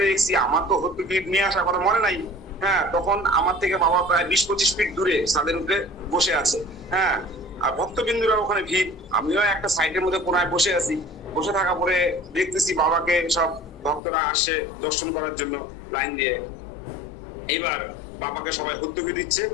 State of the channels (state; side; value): drops out; right; at 14.0 s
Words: দেখছি, আমার তো হর্তুকি নিয়ে আসার কথা মনে নাই। হ্যাঁ তখন আমার থেকে বাবা প্রায় 20-25 ফিট দূরে ছাদের উপরে বসে আছে। হ্যাঁ আর ভক্তবিন্দুরা ওখানে ভিড়, আমিও একটা সাইডের মধ্যে কোনায় বসে আছি। বসে থাকা পরে দেখতেছি বাবাকে সব ভক্তরা আসে দর্শন করার জন্য লাইন দিয়ে। এইবার বাবাকে সবাই হর্তুকি দিচ্ছে,